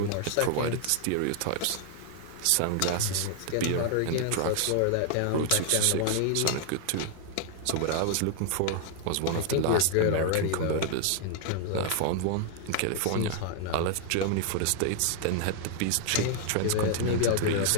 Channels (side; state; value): both; different; correlation 0.00